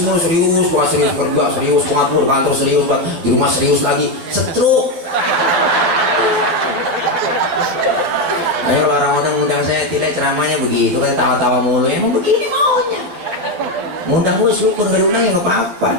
mulu, serius, bukan serius kerja, serius pengatur kantor, serius di rumah, serius lagi, setruk. Ayo orang undang saya tidak ceramahnya begitu kan, tawa-tawa mulu, emang begini maunya. Ngundang gue syukur, gak diundang ya nggak apa-apa.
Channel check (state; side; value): late; left; 11 ms